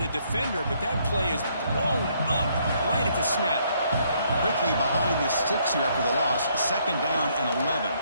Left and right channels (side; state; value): both; inverted; correlation -0.69